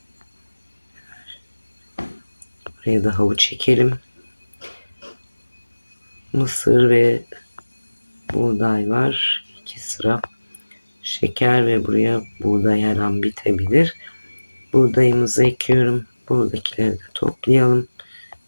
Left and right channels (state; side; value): inverted; both; correlation -1.00